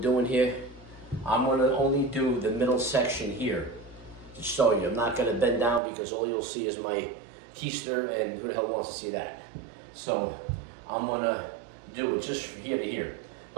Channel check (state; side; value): drops out; left; at 5.8 s